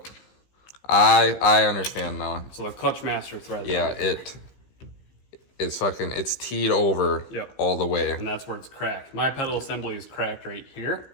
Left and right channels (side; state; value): right; late; 16 ms